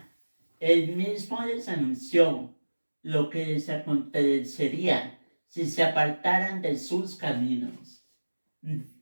él mismo les anunció lo que les acontecería si se apartaran de sus caminos.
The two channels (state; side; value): inverted; both; correlation -1.00